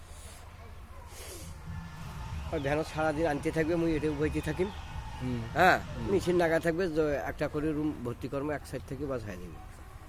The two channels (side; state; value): both; identical; correlation 1.00